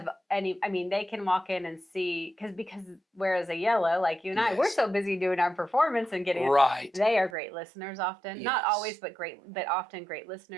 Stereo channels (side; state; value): left; drops out; at 7.4 s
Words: They can walk in and see, because whereas a yellow, like you and I, we're so busy doing our performance and getting right. They are great listeners often. Not always, but often great